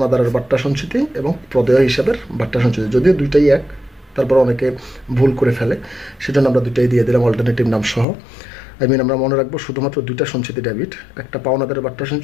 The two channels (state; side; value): drops out; right; at 8.1 s